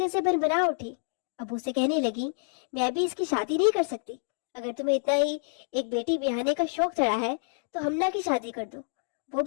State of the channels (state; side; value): silent; right; 59 dB below the other